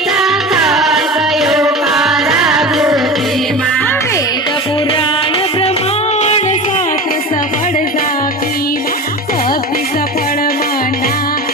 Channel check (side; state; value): both; normal; correlation 0.30